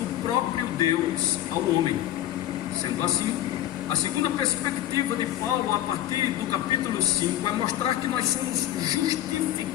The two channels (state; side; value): quieter; right; 13.0 dB